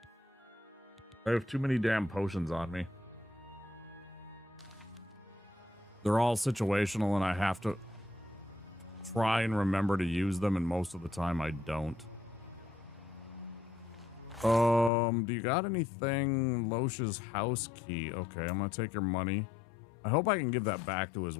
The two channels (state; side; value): drops out; right; at 14.9 s